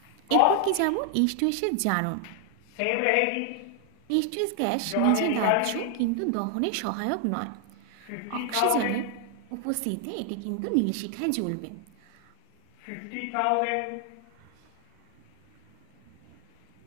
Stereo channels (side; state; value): both; different; correlation 0.00